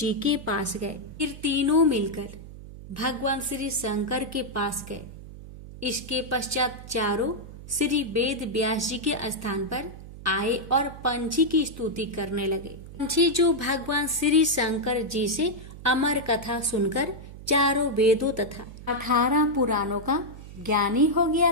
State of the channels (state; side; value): noise; right; hum, 14 dB below the sound